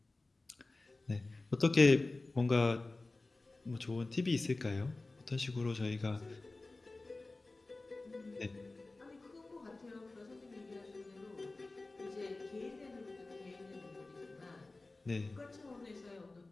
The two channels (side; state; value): right; quieter; 3.2 dB